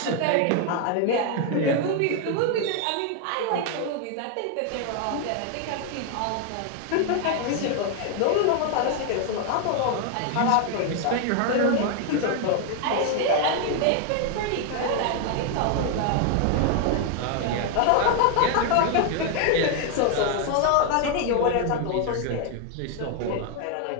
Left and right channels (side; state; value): both; different; correlation 0.00